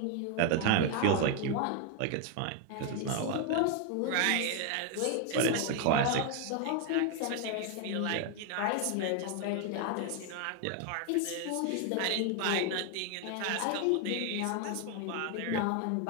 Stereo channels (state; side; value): different; both; correlation 0.01